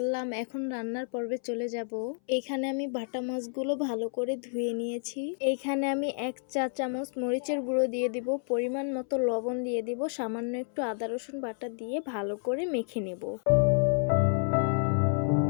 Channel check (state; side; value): silent; right; 58 dB below the other